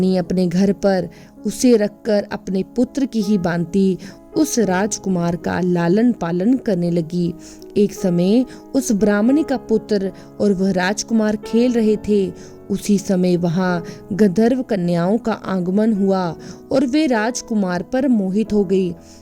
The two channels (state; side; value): identical; both; correlation 1.00